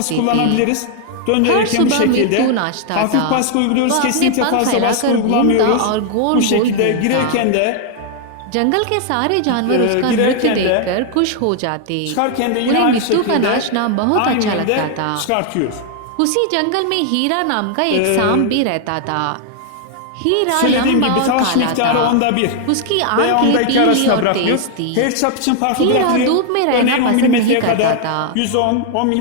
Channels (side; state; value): both; different; correlation 0.00